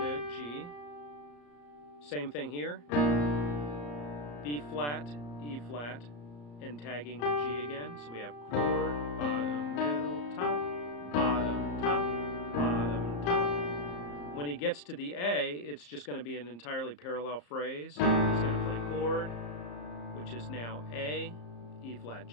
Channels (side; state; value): right; late; 34 ms